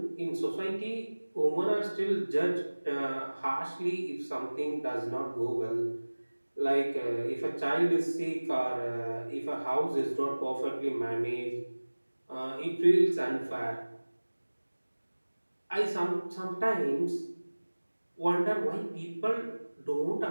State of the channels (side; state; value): both; inverted; correlation -1.00